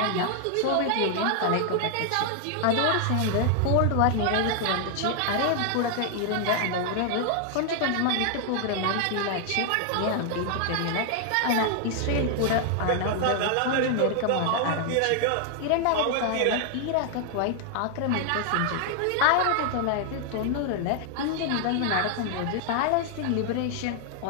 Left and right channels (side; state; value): both; different; correlation 0.00